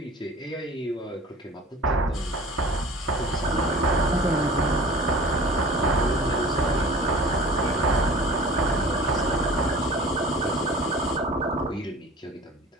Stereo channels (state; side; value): normal; both; correlation 0.42